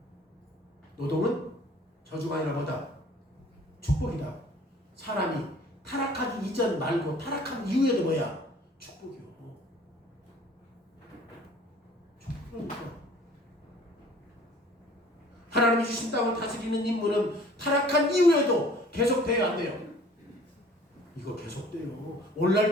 노동은 저주가 아니라 뭐다? 축복이다. 사람이 타락하기 이전 말고 타락한 이후에도 뭐야? 축복이요. 축복이니까. 하나님이 주신 땅을 다스리는 임무는 타락한 이후에도 계속돼야 안 돼요. 이거 계속돼요.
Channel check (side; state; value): both; normal; correlation 0.52